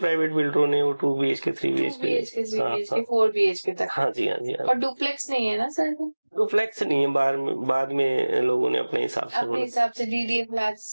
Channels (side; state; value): both; inverted; correlation -1.00